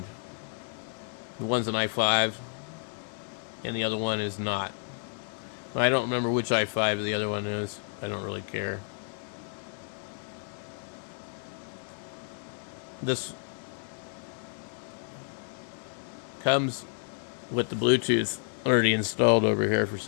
the one's an i5 and the other one is not. I don't remember which i5 the other one is. I don't really care. This comes with the Bluetooth already installed over here for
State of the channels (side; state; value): right; silent; 57 dB below the other